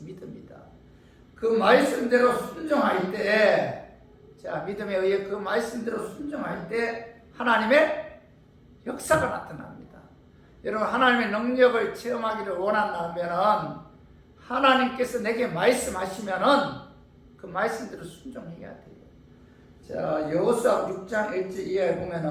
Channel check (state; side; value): identical; both; correlation 1.00